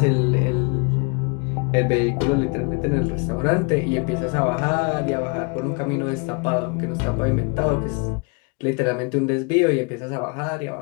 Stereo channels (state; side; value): quieter; right; 32.7 dB